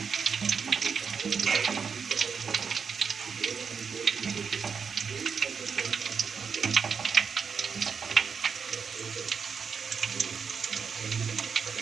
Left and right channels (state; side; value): quieter; left; 6.1 dB